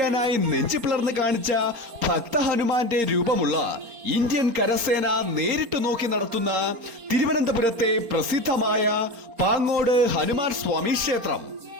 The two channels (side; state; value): left; late; 4.3 ms